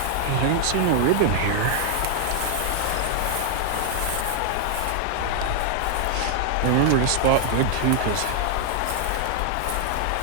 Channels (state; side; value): different; both; correlation 0.00